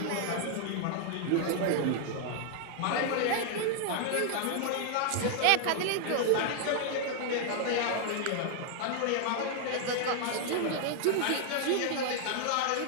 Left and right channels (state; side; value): different; both; correlation 0.00